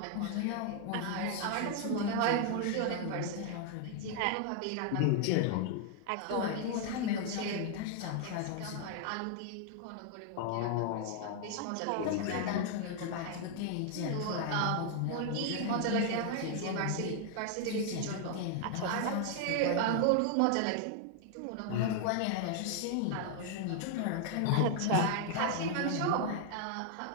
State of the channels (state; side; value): different; both; correlation 0.00